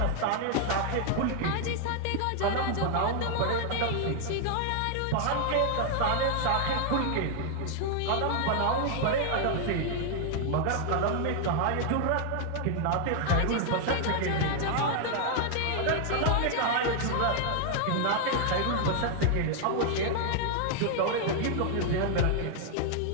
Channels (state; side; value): different; both; correlation 0.00